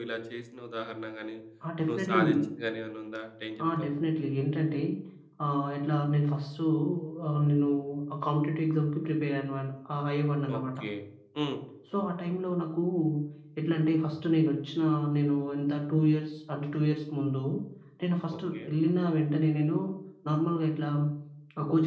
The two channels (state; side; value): identical; both; correlation 1.00